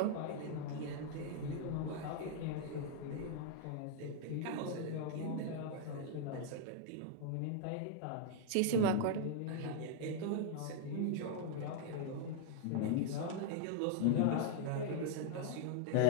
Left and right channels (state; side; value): different; both; correlation -0.01